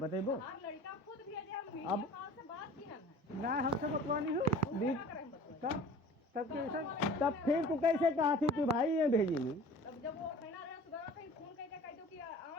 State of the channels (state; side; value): normal; both; correlation 0.44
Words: हर लड़का खुद भेजे, हम वीडियो अब- कॉल से बात की है। ना हमसे बतवानी हो क्या करें बतवाई? तब कैसे तब फिर तू कैसे कहा थी कि भाई ये भेजी नहीं? तब जब वो कहना रहे सुबह कहीं फोन करके कह दो कि